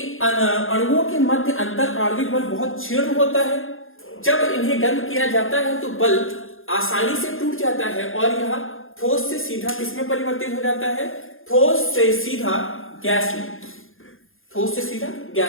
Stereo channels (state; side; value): late; right; 0.60 ms